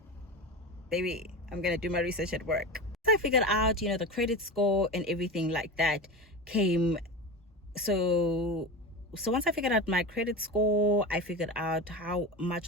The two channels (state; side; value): normal; both; correlation 0.26